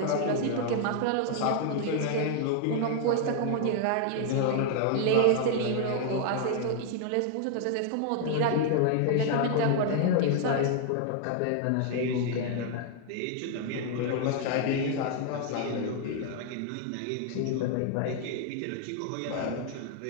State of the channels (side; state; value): both; different; correlation 0.00